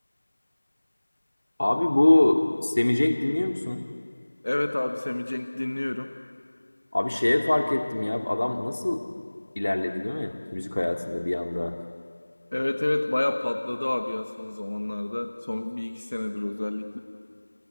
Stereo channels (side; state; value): both; inverted; correlation -1.00